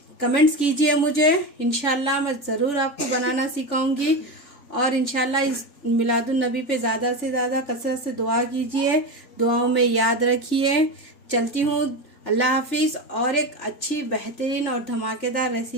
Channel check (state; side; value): late; right; 3.5 ms